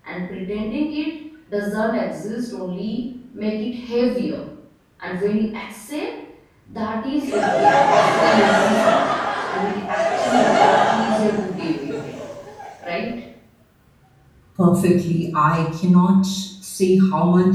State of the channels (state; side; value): identical; both; correlation 1.00